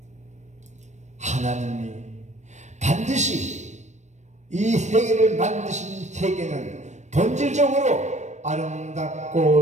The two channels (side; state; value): left; late; 0.34 ms